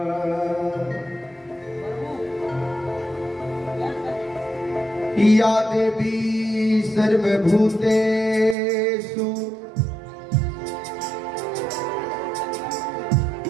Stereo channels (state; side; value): drops out; left; at 8.6 s